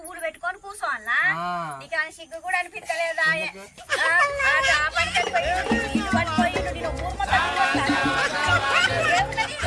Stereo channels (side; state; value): both; identical; correlation 1.00